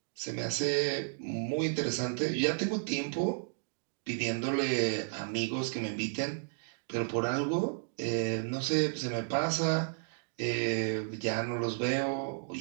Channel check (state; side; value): silent; left; digital silence